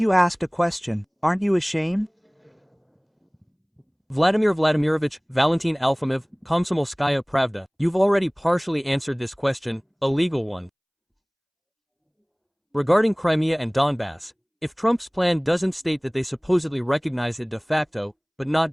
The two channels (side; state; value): both; identical; correlation 1.00